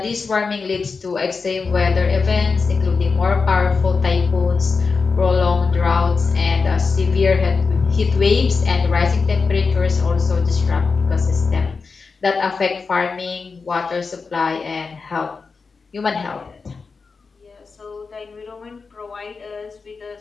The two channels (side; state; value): right; quieter; 4.7 dB